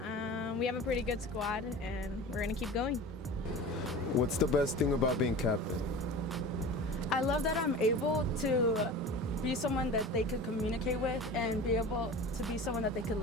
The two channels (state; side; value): normal; both; correlation 0.36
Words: We have a pretty good squad, and we're gonna keep going. What's the best thing about being captain? I love that I'm able to be someone that they could communicate with and be able to be someone that they could